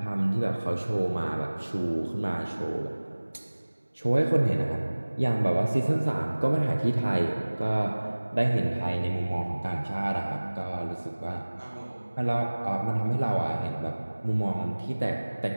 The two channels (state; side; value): inverted; both; correlation -1.00